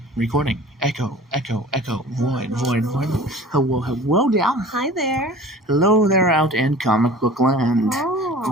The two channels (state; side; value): normal; both; correlation 0.42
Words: Echo. Void. Hello there. Hi there. Hello there out in comic book land. Oh.